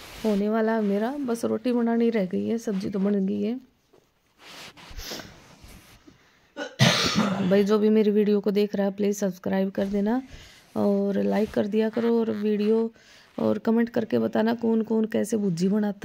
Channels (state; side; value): identical; both; correlation 1.00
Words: होने वाला है मेरा। बस रोटी बनानी रह गई है, सब्जी तो बन गई है। भाई जो भी मेरी वीडियो को देख रहा है प्लीज़ सब्सक्राइब कर देना और लाइक कर दिया करो, और वीडियो और कमेंट करके बताना कौन कौन कैसे भुर्जी